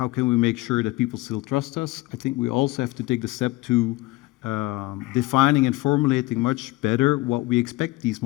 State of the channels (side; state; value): right; quieter; 20.4 dB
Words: can we make sure that people still trust us. I think we also have to take the step to defining and formulating much better what we expect these